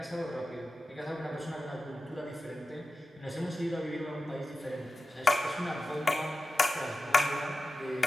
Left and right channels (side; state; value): both; normal; correlation 0.93